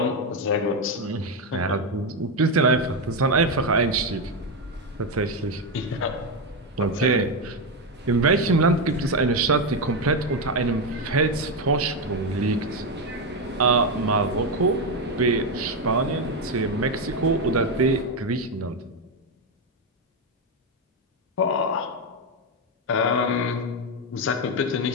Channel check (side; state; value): both; normal; correlation 0.08